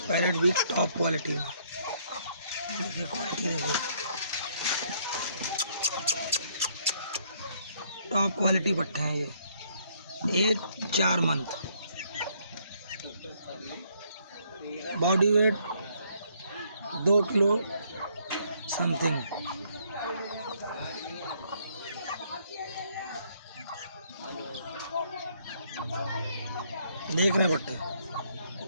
पैरेट भी टॉप क्वालिटी में। देखिए क्वालिटी देखिए, टॉप क्वालिटी पट्टे हैं ये। Age 4 month. Body weight 2 kilo something. देख रहे पट्टे,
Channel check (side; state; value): both; inverted; correlation -0.68